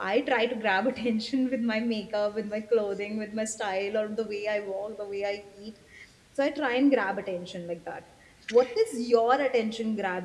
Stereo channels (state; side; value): identical; both; correlation 1.00